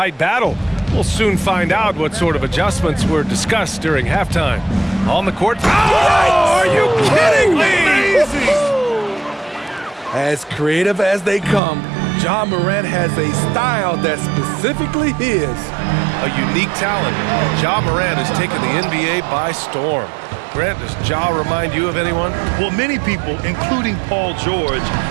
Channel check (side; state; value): left; drops out; at 11.6 s